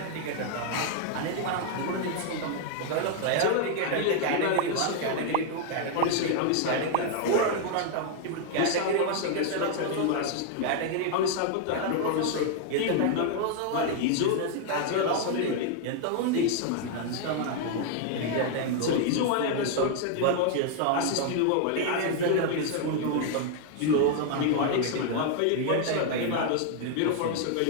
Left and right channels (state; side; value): different; both; correlation 0.00